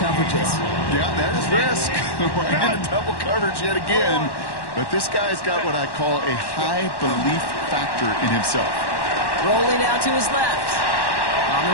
Yeah, that is risk. We're in a double coverage yet again. But this guy's got what I call a high belief factor in himself. Rolling out to his left. On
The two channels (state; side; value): late; right; 1.1 ms